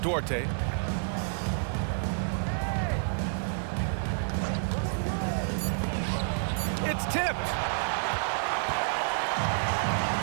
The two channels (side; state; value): left; silent; 58 dB below the other